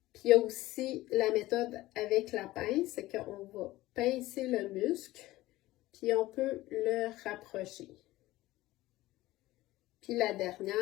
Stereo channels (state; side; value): quieter; right; 17.3 dB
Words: Puis il y a aussi la méthode avec la pince, c'est qu'on va pincer le muscle, puis on peut le rapprocher. Puis la